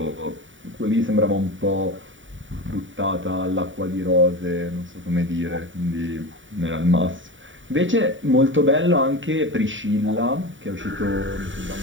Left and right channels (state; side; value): late; left; 0.56 ms